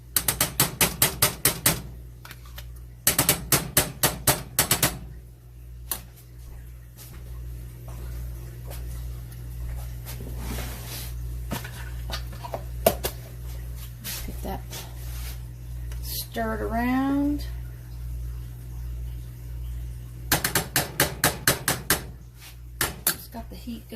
Stir it around. Just got the heat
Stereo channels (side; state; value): both; identical; correlation 1.00